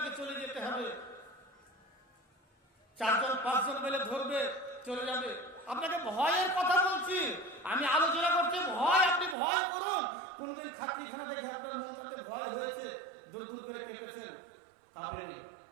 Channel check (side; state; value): left; drops out; at 9.3 s